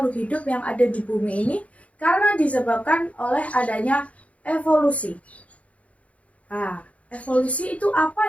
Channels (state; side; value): late; right; 0.066 ms